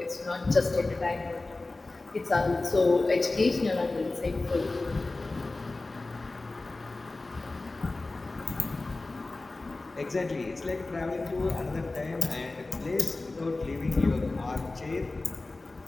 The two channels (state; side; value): quieter; right; 3.2 dB